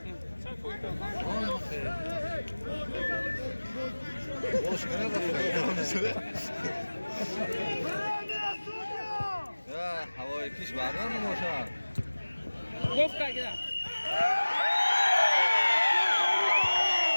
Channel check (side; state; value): both; inverted; correlation -1.00